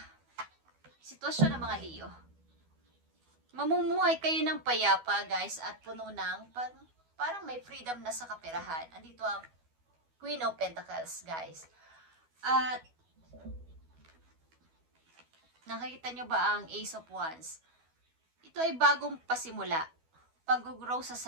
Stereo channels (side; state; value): left; late; 12 ms